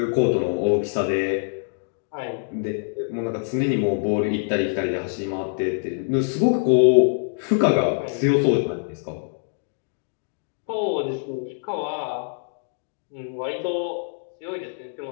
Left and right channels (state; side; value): silent; right; digital silence